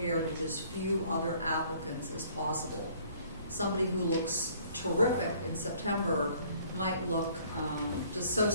with as few other applicants as possible. Somebody who looks terrific in September might look just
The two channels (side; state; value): both; inverted; correlation -0.58